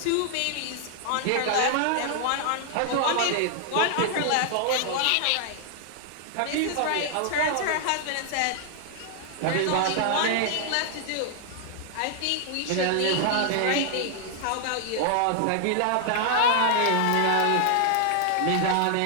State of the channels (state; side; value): different; both; correlation 0.00